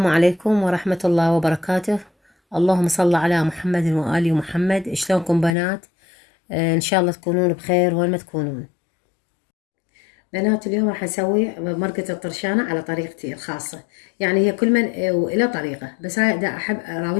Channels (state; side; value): drops out; right; at 5.5 s